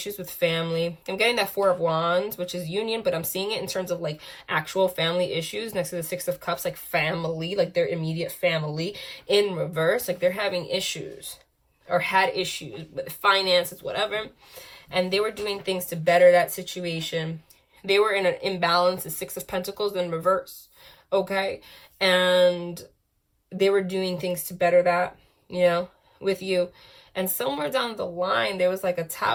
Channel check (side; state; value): both; identical; correlation 1.00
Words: with family. I'm getting that Four of Wands, which is union, but I'm seeing it in terms of like actual family issues next to the Six of Cups, like family, like their immediate family in reverse. Like they're having issues or had issues with finances, whatever. And they were doing things to better that situation. They were in an imbalance, the Six of Pentacles in reverse, okay? And they were doing things to better that, you know, with you. And somewhere down the line, there was like a